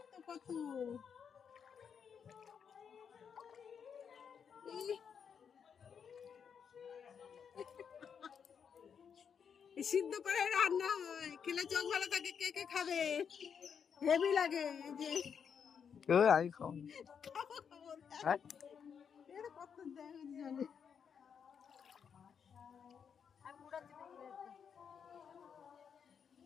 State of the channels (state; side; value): quieter; right; 7.1 dB